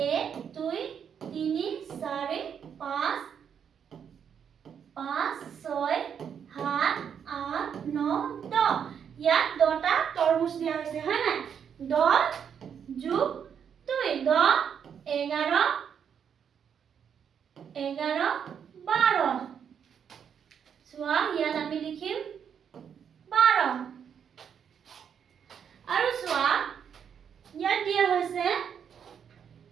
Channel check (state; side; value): quieter; left; 7.8 dB